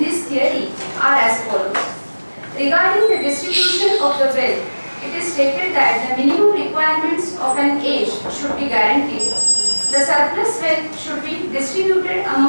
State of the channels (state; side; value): inverted; both; correlation -1.00